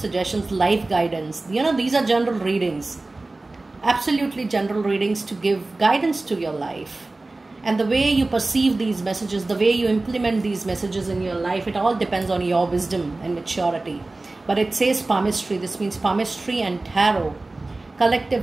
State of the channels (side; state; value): left; quieter; 3.1 dB